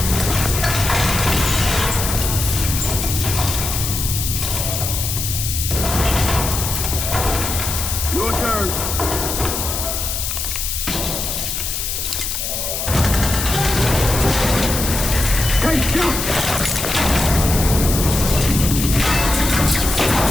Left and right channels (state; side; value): noise; left; hiss, 3 dB below the sound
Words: Your turn. Take shot!